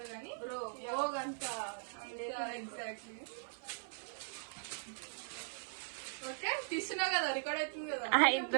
కానీ అంత ఎగ్జాక్ట్లీ. ఓకే తీస్తున్నావు కదా, రికార్డ్ అవుతుంది కదా.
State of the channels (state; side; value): silent; left; 51 dB below the other